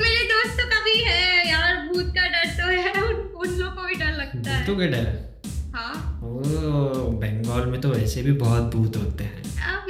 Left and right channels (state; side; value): identical; both; correlation 1.00